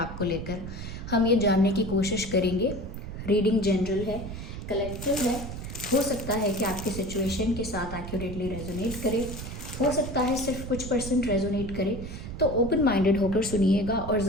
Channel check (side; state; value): right; noise; rumble, 8 dB below the sound